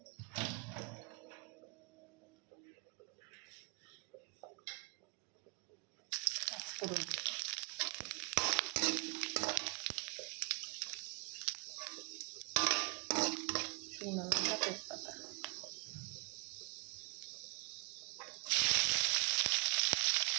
পাঁচফোড়ন, শুকনো লঙ্কা, তেজপাতা।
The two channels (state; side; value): quieter; left; 37.6 dB